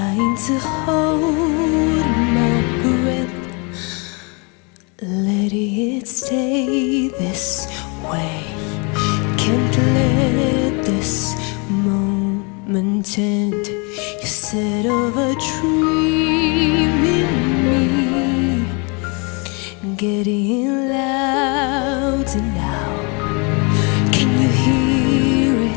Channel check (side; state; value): right; quieter; 32.4 dB